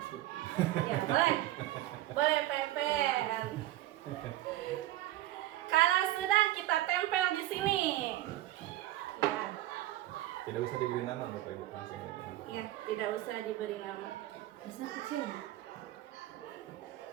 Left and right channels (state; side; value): quieter; left; 15.1 dB